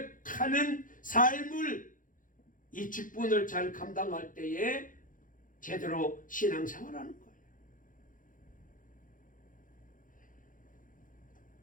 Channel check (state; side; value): late; right; 0.39 ms